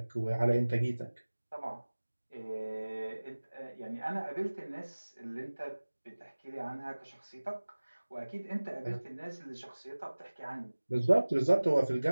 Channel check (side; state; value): both; inverted; correlation -1.00